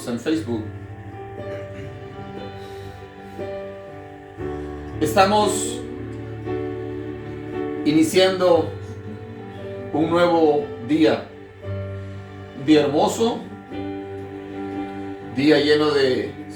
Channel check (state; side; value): identical; both; correlation 1.00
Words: en Facebook. Estamos iniciando un nuevo día, un día hermoso, día lleno de